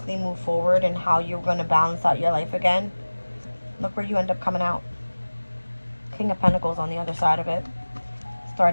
move forward in how you were going to balance out your life again. Look where you end up coming out. King of Pentacles on the other side of it.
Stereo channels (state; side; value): inverted; both; correlation -1.00